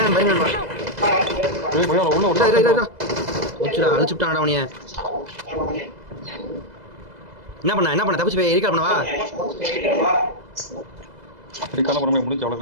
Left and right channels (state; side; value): late; left; 2.0 ms